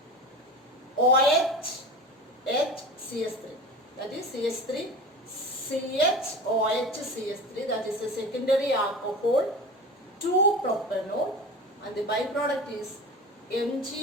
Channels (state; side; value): normal; both; correlation 0.32